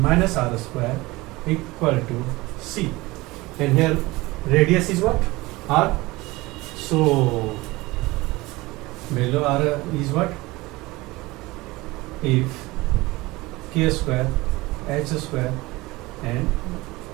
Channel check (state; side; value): quieter; left; 21.2 dB